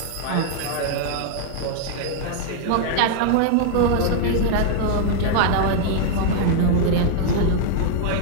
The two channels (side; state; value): both; different; correlation -0.01